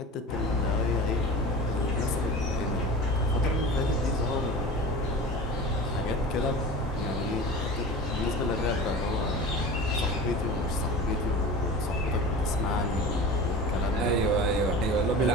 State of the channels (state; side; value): normal; both; correlation 0.34